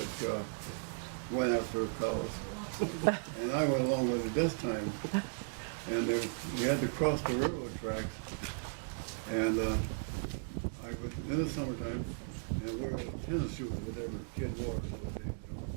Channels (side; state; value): left; silent; digital silence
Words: that went after cows. And I went along with it this time. And we had to cross the railroad tracks. And I was in the summertime, and we were in tennis shoes with their kid Morris.